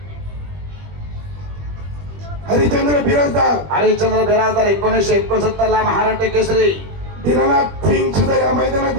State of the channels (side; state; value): left; late; 21 ms